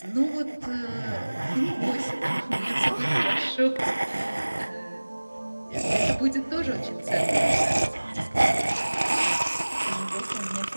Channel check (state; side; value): inverted; both; correlation -1.00